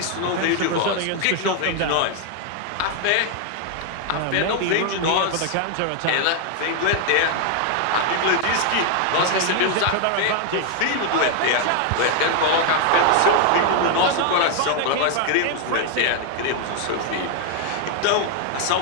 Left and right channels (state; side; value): different; both; correlation 0.00